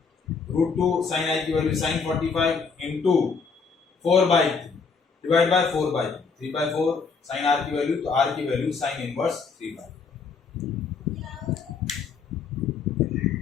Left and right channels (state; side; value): quieter; right; 5.1 dB